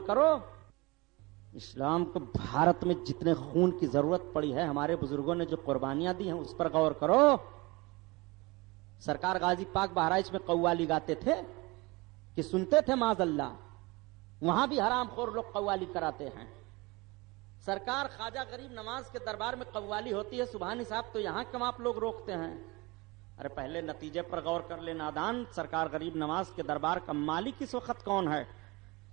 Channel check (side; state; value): left; quieter; 24.1 dB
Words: کرو۔ اسلام کو بھارت میں جتنے خون کی ضرورت پڑی ہے، ہمارے بزرگوں نے جو قربانیاں دی ہیں اس پر غور کرو۔ سرکار غازی پاک بہرائچ میں قوالی گاتے تھے کہ سنتے تھے معاذ اللہ؟ وہاں بھی حرام خور لوگ قوالی کراتے ہیں. سرکار خواجہ غریب نواز کے دربار میں قوالی ہوتی ہے سبحانی صاحب، تو یہاں کیوں آپ لوگ روکتے ہیں؟ ارے پہلے نتیجے پر غور کر لے نادان. سرکار غریب نواز کے دربار کا مالک اس وقت کون ہے؟